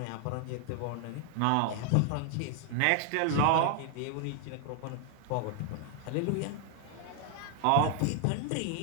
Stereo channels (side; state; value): both; different; correlation 0.00